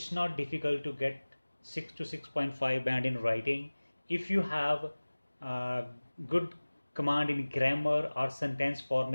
not difficult to get 6 to 6.5 band in writing if you have good command in grammar or sentence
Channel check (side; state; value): both; inverted; correlation -1.00